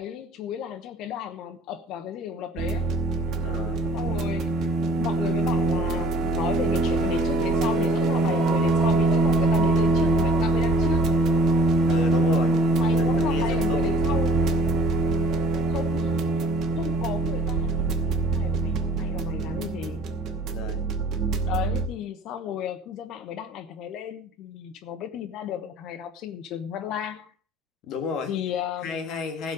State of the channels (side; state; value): both; normal; correlation 0.50